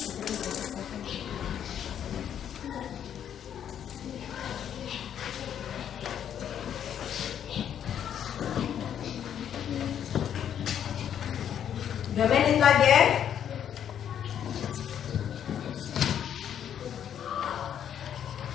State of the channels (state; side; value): quieter; right; 9.4 dB